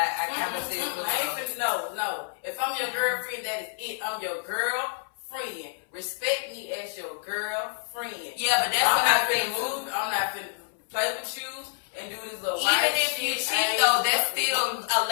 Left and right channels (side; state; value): right; silent; 59 dB below the other